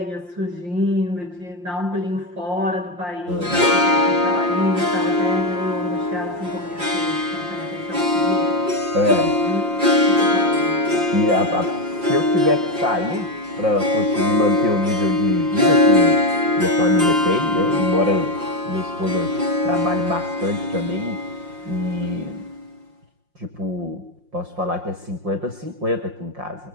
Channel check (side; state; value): left; late; 5.7 ms